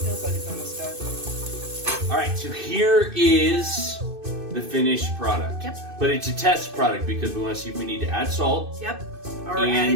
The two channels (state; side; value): late; left; 2.6 ms